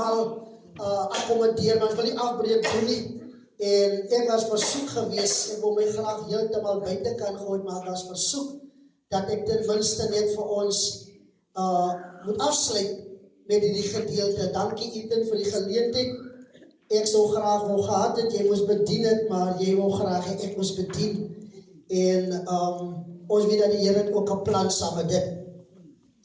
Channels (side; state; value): both; identical; correlation 1.00